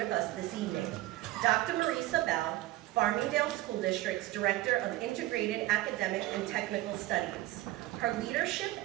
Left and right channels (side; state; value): left; quieter; 16.5 dB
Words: us this evening. Dr. Marisa Bell, Farmingdale School District's Director of Integrated Academic and Technical Studies. Her leadership